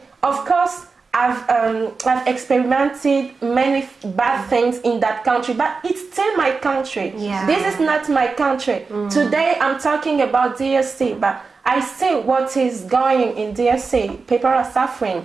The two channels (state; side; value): quieter; left; 4.5 dB